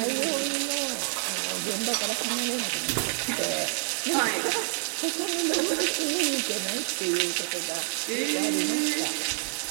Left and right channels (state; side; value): silent; left; 58 dB below the other